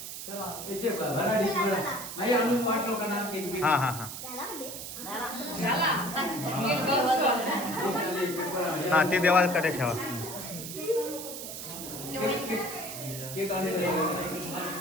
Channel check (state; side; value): noise; right; hiss, 8 dB below the sound